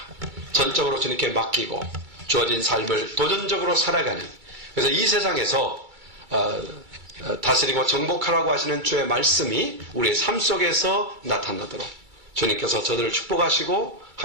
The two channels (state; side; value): late; left; 2.3 ms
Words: 전적으로 주님께 맡기고 주어진 삶을 도전적으로 살아가는, 그래서 이 세상에서 다스리고 정복하라고 하시는 주의 말씀이 우리의 삶 속에서 나타나도록 주님께서 저들을 축복하시고